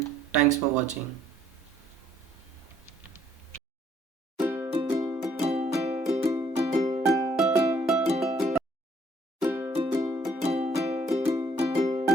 thanks for watching.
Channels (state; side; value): normal; both; correlation 0.64